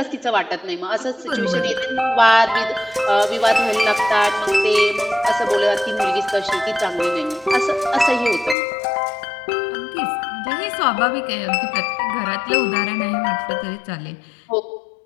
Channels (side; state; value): right; drops out; at 8.6 s